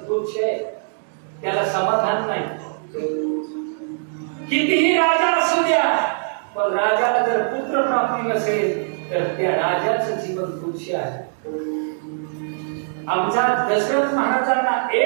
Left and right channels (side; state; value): left; silent; digital silence